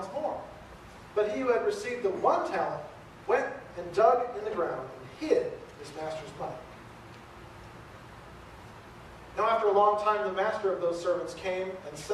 more. But he who had received the 1 talent went and dug in the ground and hid his master's money. Now after a long time the master of those servants came and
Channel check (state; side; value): identical; both; correlation 1.00